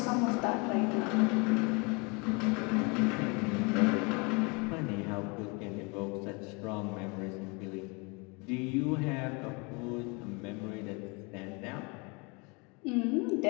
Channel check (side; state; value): right; quieter; 30.0 dB